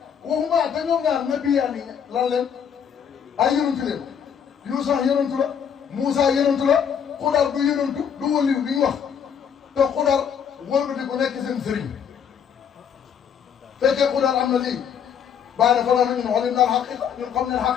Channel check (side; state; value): right; quieter; 7.8 dB